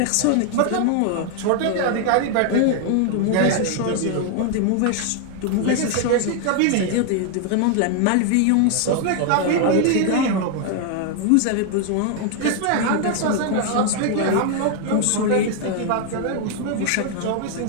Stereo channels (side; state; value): both; different; correlation 0.00